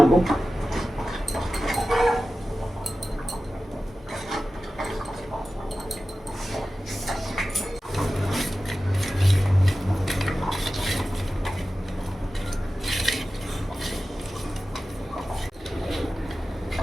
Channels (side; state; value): both; normal; correlation 0.94